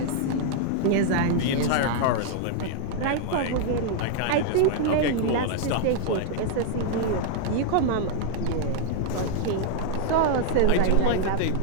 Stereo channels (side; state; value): both; different; correlation 0.00